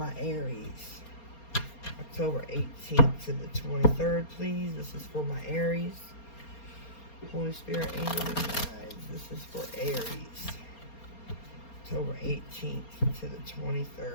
Aries. October 18th to the 23rd, please. This is for my Aries. Holy Spirit, angels, and guides. This is for Aries. October 18th to the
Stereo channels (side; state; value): right; late; 4.3 ms